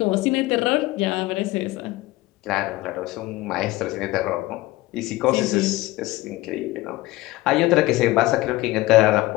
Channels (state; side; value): quieter; right; 18.8 dB